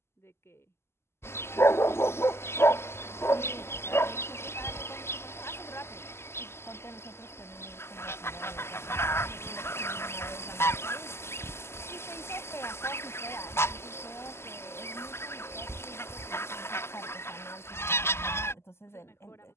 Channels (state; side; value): late; right; 0.12 ms